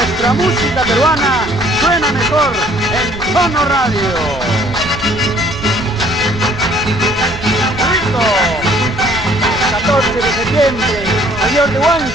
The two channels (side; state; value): right; noise; rumble, 15 dB below the sound